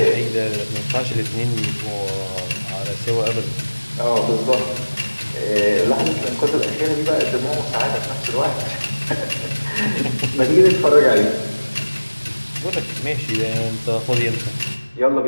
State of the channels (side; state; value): both; inverted; correlation -1.00